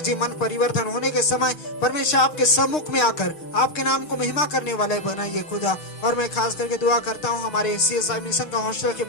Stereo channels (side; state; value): right; late; 6.6 ms